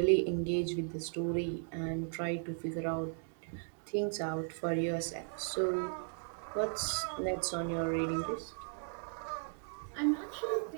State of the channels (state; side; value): silent; left; digital silence